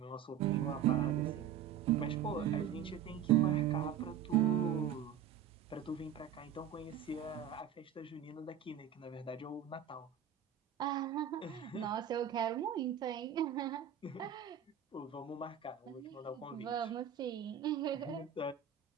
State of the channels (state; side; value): quieter; left; 8.9 dB